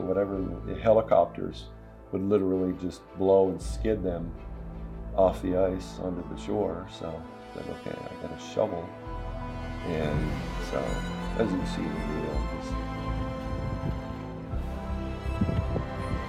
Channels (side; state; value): both; identical; correlation 1.00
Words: whatever. And the helicopters would literally just blow and skid them off the ice onto the shore. So I said, okay, I got a shovel. And so, as you can see in the video, just